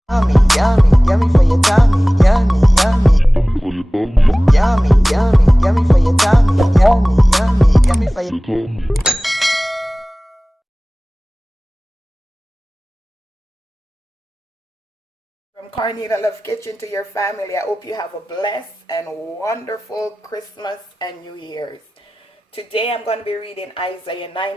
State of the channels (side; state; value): both; normal; correlation 0.98